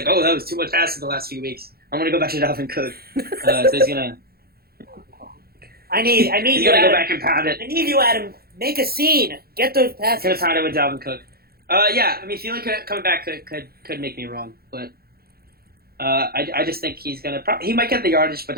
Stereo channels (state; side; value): late; left; 0.44 ms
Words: oh, that was too much passing the last few weeks. I'm going to go back to Dalvin Cook. So he's going to... I need He's you, going to go Adam. back and pound it. I need you, Adam. Make a scene. Get those He's going passes. to pound it with Dalvin Cook. Yeah, I mean, feeling coming back could make me wrong, but I just think he's going to... He might get the yardage, but